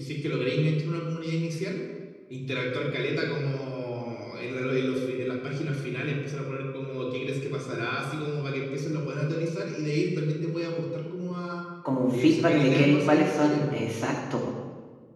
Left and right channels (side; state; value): both; identical; correlation 1.00